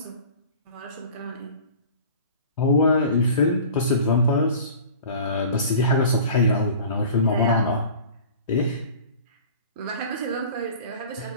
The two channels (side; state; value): both; inverted; correlation -0.42